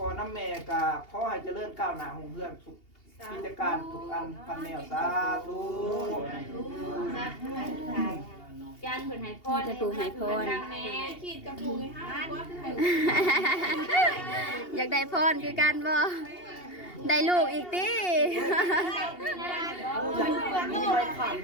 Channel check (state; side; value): late; right; 2.8 ms